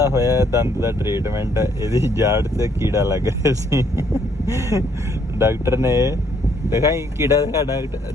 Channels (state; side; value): normal; both; correlation 0.67